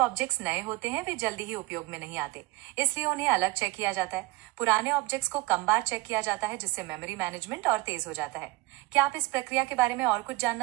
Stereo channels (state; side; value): quieter; left; 21.2 dB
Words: नए होते हैं वे जल्दी ही उपयोग में नहीं आते, इसलिए उन्हें अलग चेक किया जाता है। पुराने ऑब्जेक्ट्स को कम बार चेक किया जाता है, जिससे मेमोरी मैनेजमेंट और तेज हो जाता है। क्या आप इस प्रक्रिया के बारे में और कुछ